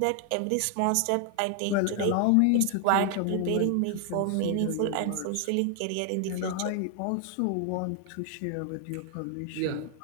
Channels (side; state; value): both; different; correlation 0.00